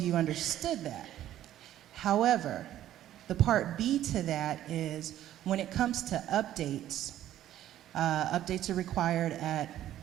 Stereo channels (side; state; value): left; quieter; 12.5 dB